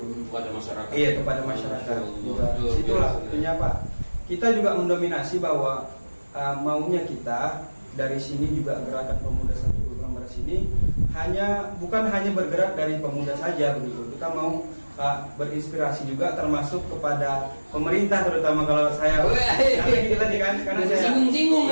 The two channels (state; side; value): inverted; both; correlation -1.00